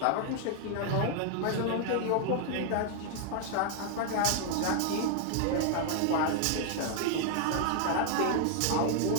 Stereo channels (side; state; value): both; different; correlation 0.00